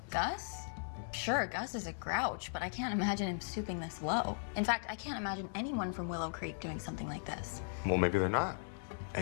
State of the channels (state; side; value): silent; right; digital silence